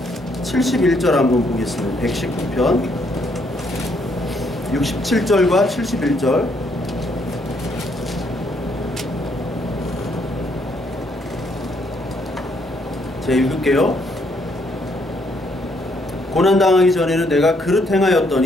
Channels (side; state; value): both; normal; correlation 0.71